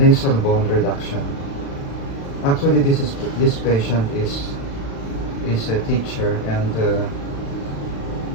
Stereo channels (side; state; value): right; late; 36 ms